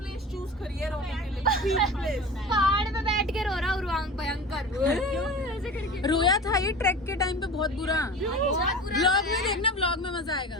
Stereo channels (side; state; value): both; normal; correlation 0.34